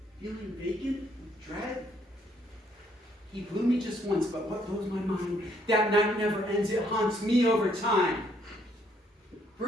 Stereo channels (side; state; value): both; normal; correlation 0.68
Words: feeling vacant with dread? He blew me just once, but what blows my mind? That night never ends, it haunts me over time.